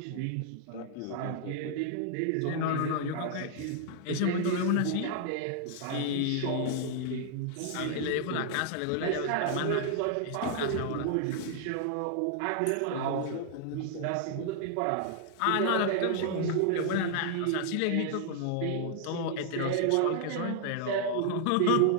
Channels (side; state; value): both; different; correlation 0.00